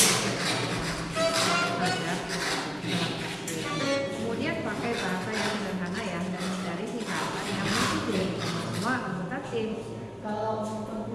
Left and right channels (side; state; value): both; identical; correlation 1.00